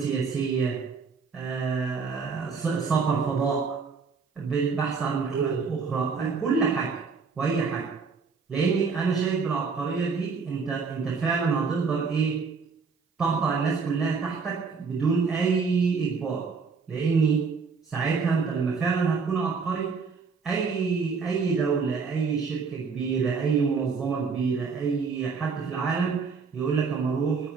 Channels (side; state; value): left; quieter; 5.1 dB